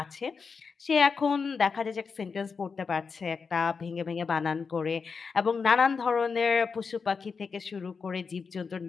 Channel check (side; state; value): right; quieter; 5.3 dB